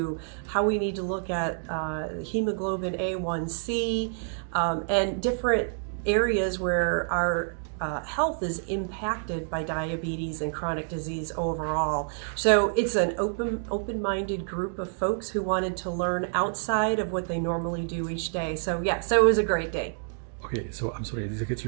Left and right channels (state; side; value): silent; left; digital silence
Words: how we need to look at hemoglobin A1C and different areas where our health is impacted by diabetes and chronic disease overall. So it's an open-minded group of folks who wanted to learn outside of what they normally do each day. So yeah, so it was a great day. Okay, so I'm sorry, did I get